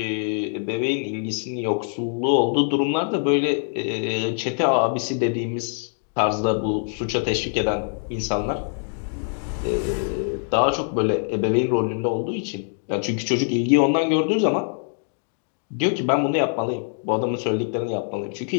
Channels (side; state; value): right; silent; digital silence